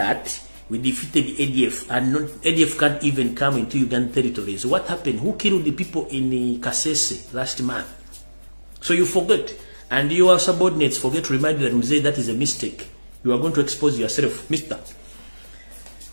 we defeated the ADF, and ADF can't even come into Ugandan territories. What happened? Who killed the people in Kasese last month? So you forget, and your subordinates forget to remind you that Mzee, that is a mistake. You are going to expose yourself, Mister.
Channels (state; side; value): inverted; both; correlation -1.00